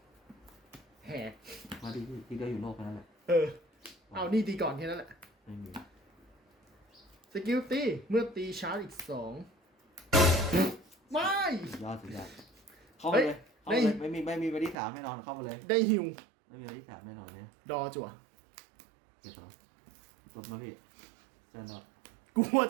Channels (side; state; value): left; drops out; at 14.8 s